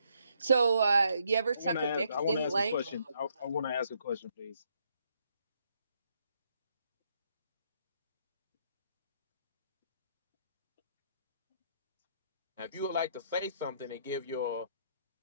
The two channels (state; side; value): inverted; both; correlation -0.73